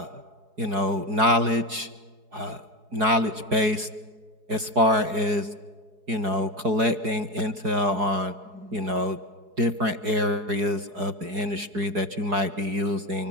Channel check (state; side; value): late; left; 4.8 ms